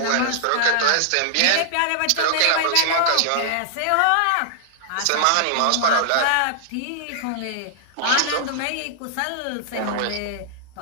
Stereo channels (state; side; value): different; both; correlation -0.01